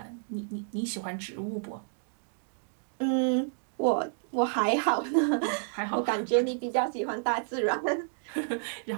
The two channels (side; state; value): left; silent; digital silence